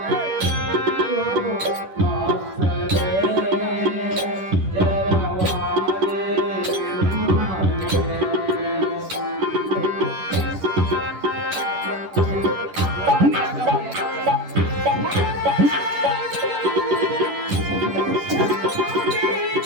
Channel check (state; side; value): late; left; 10 ms